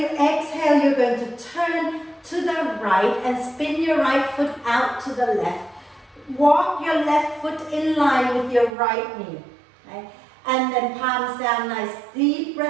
exhale, you're going to turn to the right and spin your right foot out to the left. Walk your left foot in line with your right knee. Okay? And then palms down, nice deep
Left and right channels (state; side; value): drops out; left; at 8.7 s